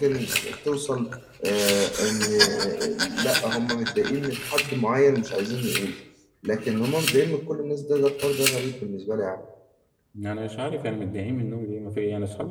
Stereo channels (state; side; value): identical; both; correlation 1.00